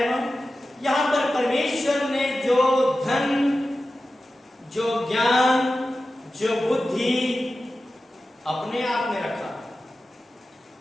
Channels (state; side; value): normal; both; correlation 0.94